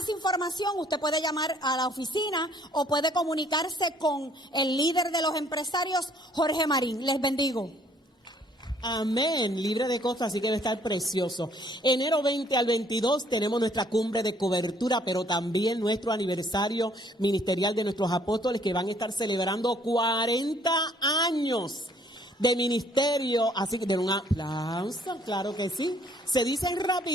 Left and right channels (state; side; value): normal; both; correlation 0.62